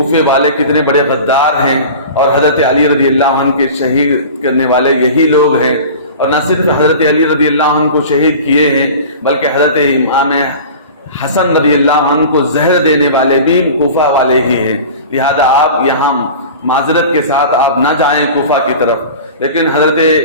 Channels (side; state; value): both; inverted; correlation -0.37